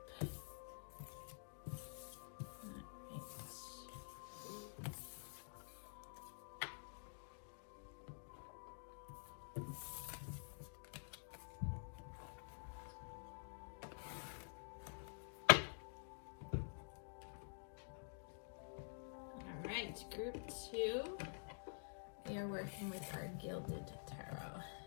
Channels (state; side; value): silent; right; digital silence